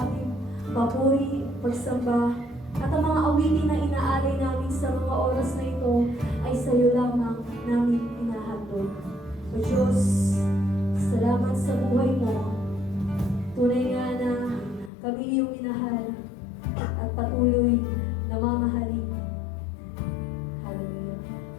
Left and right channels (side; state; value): right; drops out; at 14.9 s